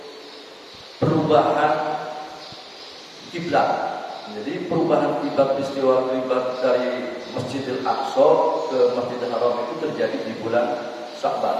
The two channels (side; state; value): both; identical; correlation 1.00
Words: perubahan kiblat. Jadi perubahan peristiwa dari Masjidil Aqsa ke Masjidil Haram itu terjadi di bulan